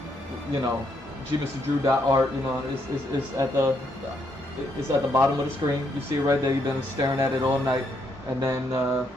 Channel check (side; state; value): both; normal; correlation 0.75